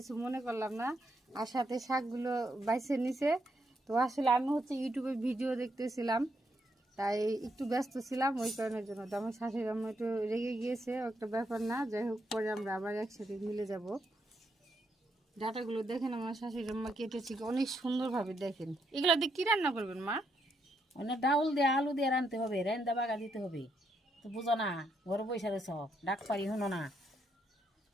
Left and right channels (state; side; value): normal; both; correlation 0.78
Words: মনে করলাম না, আর সাথে শাকগুলো বাইছে নিছে। তো আসলে আমি হচ্ছে ইউটিউবে ভিডিও দেখতেছিলাম, তাই একটু ব্যস্ত ছিলাম ওই কারণের জন্য। তো আমার শাশুড়ি আম্মা একটু রেগে গিয়েছে, একটা ব্যাপার না। যাই হোক, পরে আমরা আবার একসাথে মিলে যাব। ডাটাগুলো দেখেন আমার শাশুড়ি আম্মা কেটেছি অনেক সুন্দরভাবে। দেখেন এগুলো দিয়ে কি রান্না করবেন মা? অনেক ডাউল দিয়ে আলু দিয়ে রানতে হবে রান্দা বাগা দিতে হবে তো বুঝো না ঘরে বসে রয়েছ ডাক পারি শুনো না।